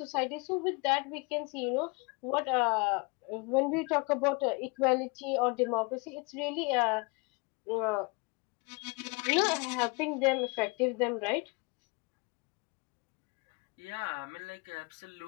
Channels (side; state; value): right; quieter; 29.1 dB